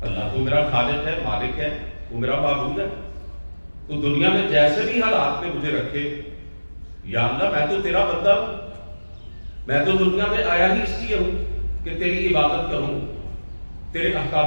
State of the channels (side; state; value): both; inverted; correlation -1.00